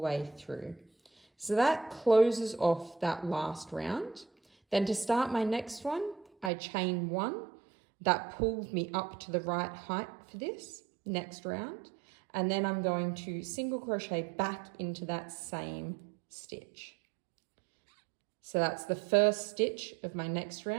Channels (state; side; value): drops out; left; at 6.5 s